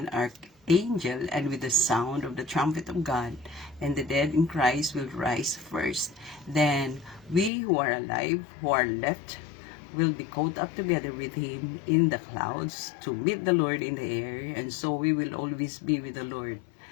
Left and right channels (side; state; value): right; drops out; at 7.5 s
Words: archangel, and with the sound of the trumpet of God, and the dead in Christ will rise first. Then we who are alive, who are left, will be caught up together with him in the clouds to meet the Lord in the air, and so we will always be with the Lord.